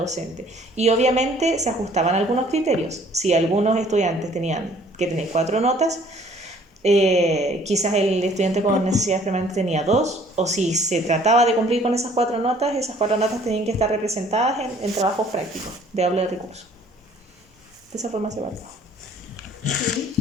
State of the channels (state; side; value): normal; both; correlation 0.57